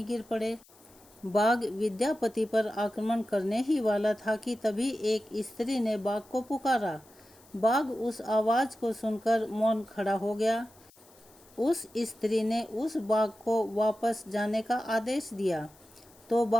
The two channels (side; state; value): left; noise; hiss, 27 dB below the sound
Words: गिर पड़े। बाघ विद्यापति पर आक्रमण करने ही वाला था कि तभी एक स्त्री ने बाघ को पुकारा। बाघ उस आवाज़ को सुनकर मौन खड़ा हो गया। उस स्त्री ने उस बाघ को वापस जाने का आदेश दिया तो